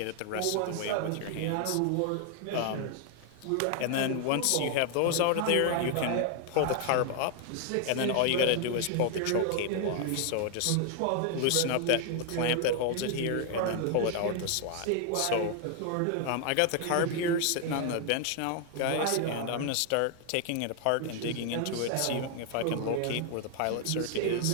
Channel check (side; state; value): both; different; correlation 0.00